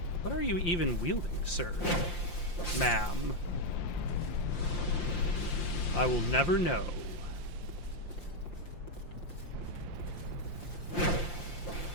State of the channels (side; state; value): right; late; 5.8 ms